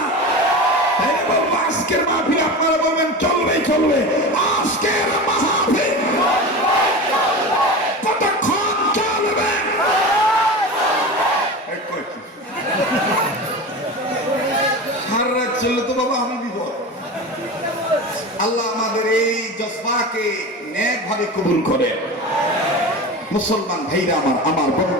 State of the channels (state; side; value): normal; both; correlation 0.28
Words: বলবো আজকের মাহফিল আপনারা বলবেন চলবে চলবে। আজকের মাহফিল কতক্ষণ চলবে? সারা রাত চললে তো বাবা আমি বিপদ। আল্লাহ আমাদের এই জজবাকে নেক ভাবে কবুল করে। মুসলমান ভাইরা আমার